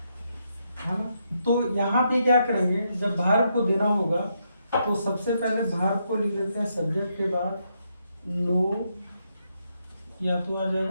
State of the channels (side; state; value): both; inverted; correlation -0.79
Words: है ना। तो यहाँ पे क्या करेंगे, जब वर्ब को देना होगा तो सबसे पहले वर्ब को लिख लेते हैं सब्जेक्ट के बाद नो, या तो आ